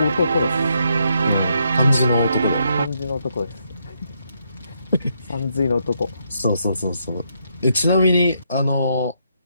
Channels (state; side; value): inverted; both; correlation -0.77